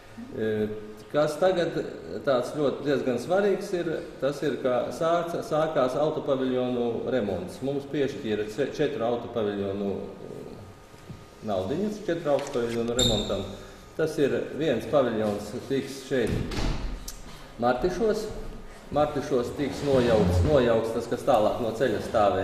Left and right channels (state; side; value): identical; both; correlation 1.00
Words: Kas tagad tāds ļoti diezgan svarīgs ir, tas ir, ka sākās autopaviljonu remonts. Mums piešķīra 4 autopaviljonu naudiņas, 4 autopaviljonu remontam. Tas ir viens paviljons tiks šeit Martišos. Martišos tiks nojaukts tas, kas tālāk no ceļa